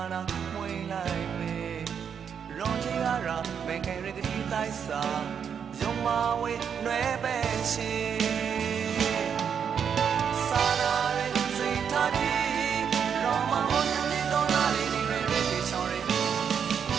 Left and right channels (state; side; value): quieter; left; 7.4 dB